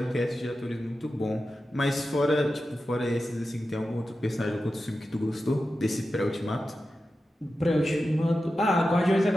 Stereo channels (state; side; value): normal; both; correlation 0.92